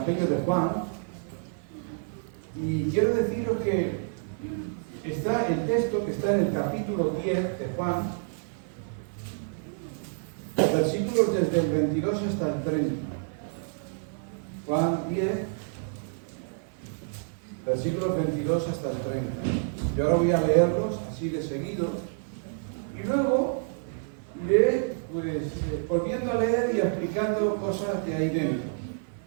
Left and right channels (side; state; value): left; silent; 57 dB below the other